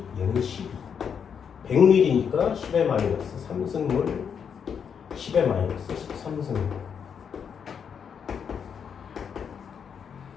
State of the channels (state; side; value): quieter; right; 7.2 dB